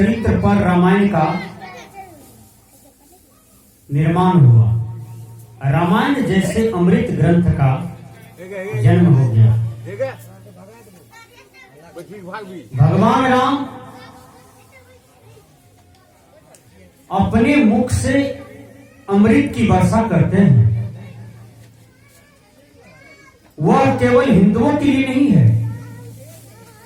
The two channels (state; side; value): identical; both; correlation 1.00